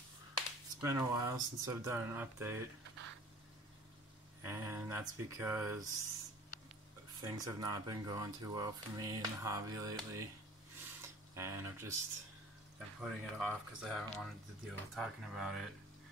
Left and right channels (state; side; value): normal; both; correlation 0.47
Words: It's been a while since I've done an update, and that's because things have not been going too well for me in the hobby lately, and I've just been putting it off because I haven't wanted to deal with talking about it